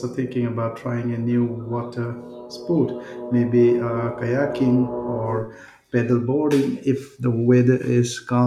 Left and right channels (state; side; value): identical; both; correlation 1.00